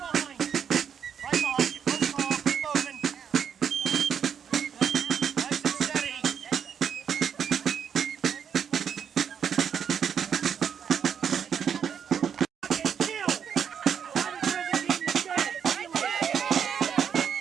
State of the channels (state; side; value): quieter; left; 7.8 dB